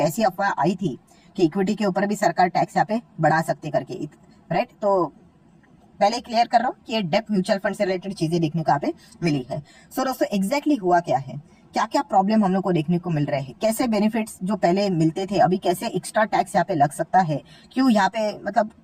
अफवाह आई थी कि इक्विटी के ऊपर भी सरकार टैक्स यहाँ पे बढ़ा सकती करके। राइट, तो पहले क्लियर कर रहा हूँ कि ये डेप्ट म्यूचुअल फंड से रिलेटेड चीजें देखने को यहाँ पे मिली है। सो दोस्तों एग्जैक्टली हुआ क्या है, क्या क्या प्रॉब्लम हम लोग को देखने को मिल रहे हैं, कैसे बेनिफिट्स जो पहले मिलते थे अभी कैसे एक्स्ट्रा टैक्स यहाँ पे लग सकता है, क्यों यहाँ पे मतलब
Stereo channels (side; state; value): both; identical; correlation 1.00